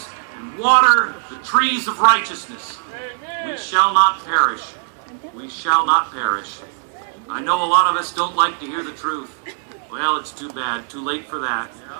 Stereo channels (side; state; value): left; silent; 62 dB below the other